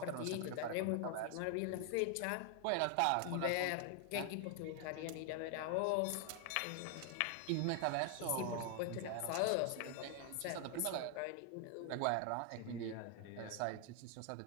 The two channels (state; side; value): different; both; correlation 0.00